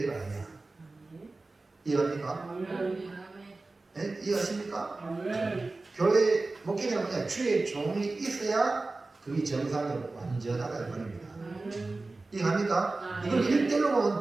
아니야. 이해합니까? 네? 이해하십니까? 교회 목회자는 뭐냐? 주의 종이 있어야 그게 정상으로 완전하다 이 말입니다. 이해합니까? 이걸 1대1로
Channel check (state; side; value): quieter; left; 3.4 dB